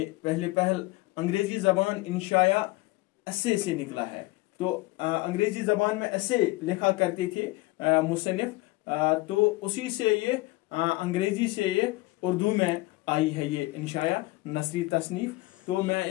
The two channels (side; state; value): right; quieter; 20.8 dB